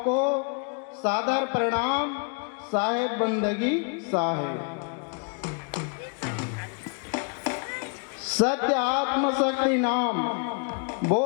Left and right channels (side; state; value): right; quieter; 39.4 dB